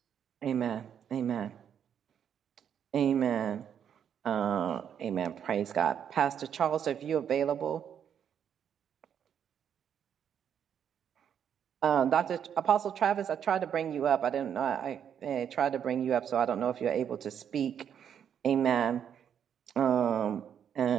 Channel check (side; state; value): left; quieter; 8.6 dB